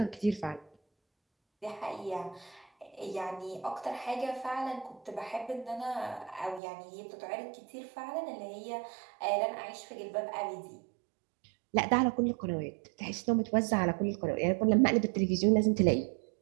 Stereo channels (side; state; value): left; drops out; at 6.6 s